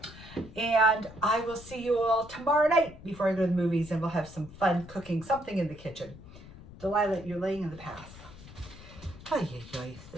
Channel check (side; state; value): left; noise; rumble, 17 dB below the sound